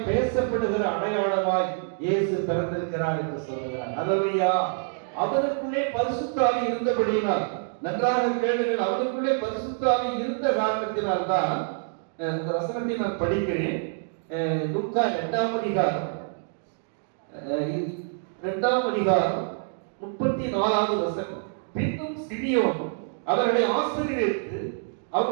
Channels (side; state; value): left; silent; digital silence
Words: பேசப்படுகிற அடையாளமாய் இயேசு பிறந்திருக்கிறார் என்று சொல்லுகிறார். அல்லேலூயா. அவருக்குள்ளே பரிசுத்த ஆவி இருந்தபடியினால், நன்றாக கேளுங்கள், அவருக்குள்ளே பரிசுத்த ஆவி இருந்த காரணத்தினால் தான் இந்த வசனத்தை நான் படிக்கிறேன். லூக்கா 2ஆம் அதிகாரம் 34வது வசனம். பின்னும் சிமியோன் அவர்களை ஆசீர்வதித்து